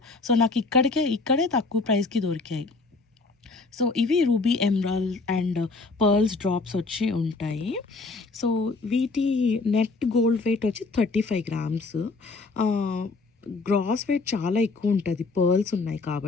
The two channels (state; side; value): quieter; right; 3.8 dB